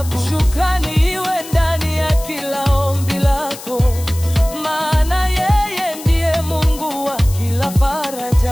Shukrani iwe ndani ya kila ombi lako, maana yeye ndiye Mungu wa kila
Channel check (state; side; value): noise; left; hiss, 14 dB below the sound